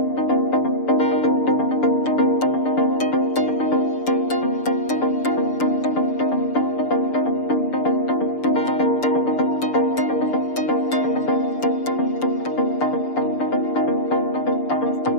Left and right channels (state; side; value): late; right; 6.7 ms